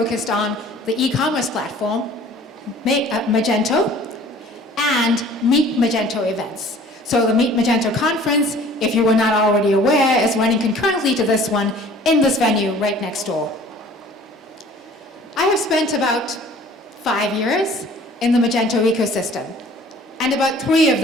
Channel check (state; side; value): normal; both; correlation 0.50